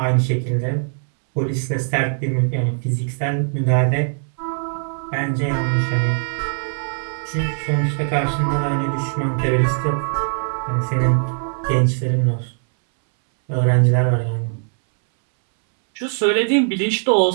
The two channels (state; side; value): silent; left; 65 dB below the other